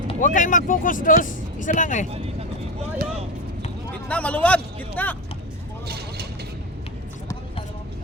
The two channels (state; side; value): normal; both; correlation 0.19